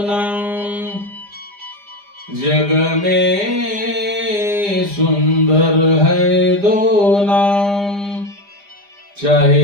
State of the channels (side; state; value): left; late; 5.0 ms